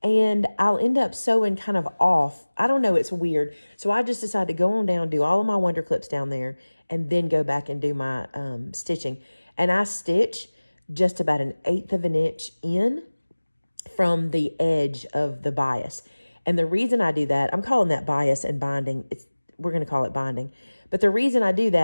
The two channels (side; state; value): both; inverted; correlation -1.00